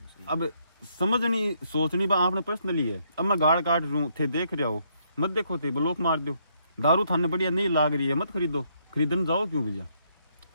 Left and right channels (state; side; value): inverted; both; correlation -0.72